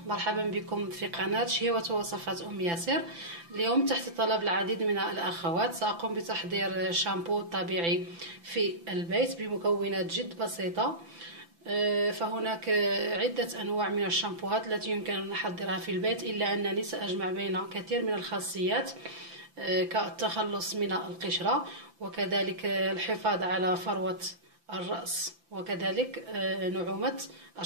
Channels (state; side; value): late; left; 5.9 ms